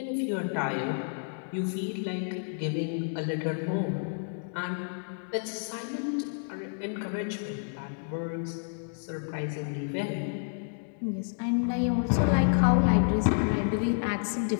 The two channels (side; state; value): right; silent; digital silence